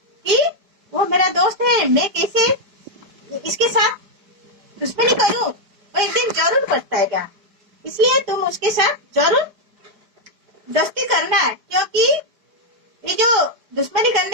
कि वो मेरा दोस्त है, मैं कैसे इसके साथ दुश्मनी करूं। वो एक दिन जरूर पछताएगा। इसलिए तुम उसके साथ जरूर दोस्ती करना है, क्योंकि ये जो दुश्मनी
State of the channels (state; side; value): late; left; 5.0 ms